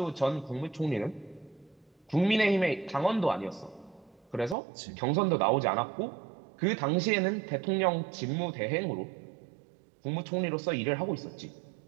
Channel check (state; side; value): drops out; left; at 4.5 s